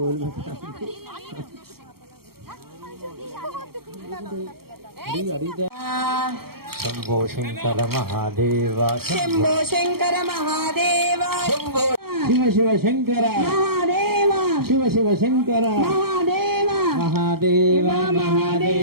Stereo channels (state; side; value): late; left; 0.94 ms